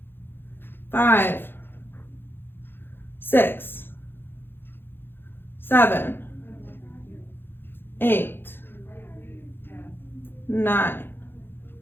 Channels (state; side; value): late; right; 0.10 ms